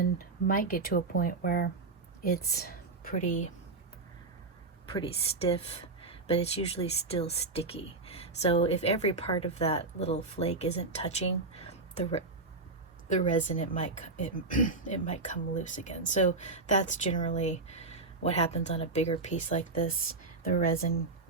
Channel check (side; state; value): left; quieter; 3.7 dB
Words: might get to a point where it's pretty stiff, but it's usually still sticky. So if every part of that little flake isn't touching the resin, it might come loose again. So that's generally what happens on a bigger piece like this. The resin